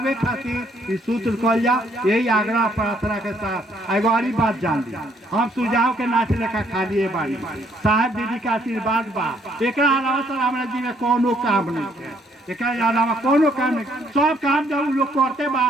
खातिर इस सूत्र कहल जा। यही आग्रह प्रार्थना के साथ एगो और बात जान ली, हम सुझाव के नाच लेखा खाली बानी, साहब दीदी के आशीर्वाद बा, एकरा अलावा सर हमरा जी में कोनो काम नहीं है, एकरा अलावा कोनो काम नहीं। सब काम जब उ लोग करते बा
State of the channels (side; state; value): both; normal; correlation 0.67